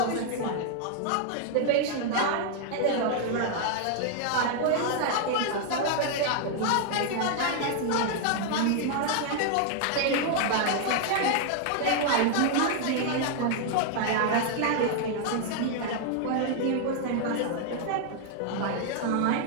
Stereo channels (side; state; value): both; different; correlation 0.00